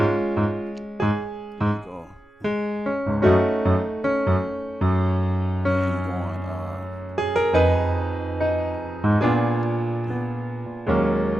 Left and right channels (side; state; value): both; normal; correlation 0.91